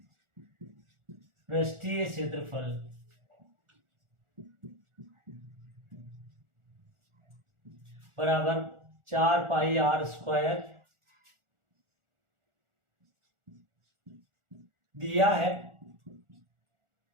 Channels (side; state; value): left; late; 1.4 ms